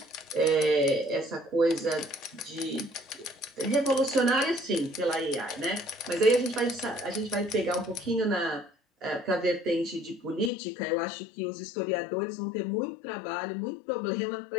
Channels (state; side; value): drops out; right; at 10.5 s